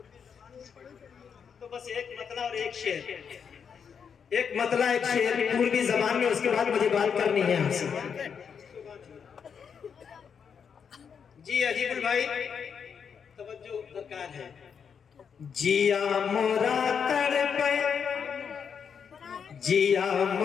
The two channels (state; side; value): quieter; right; 6.9 dB